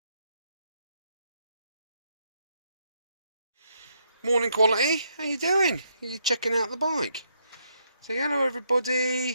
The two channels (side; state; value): both; inverted; correlation -0.76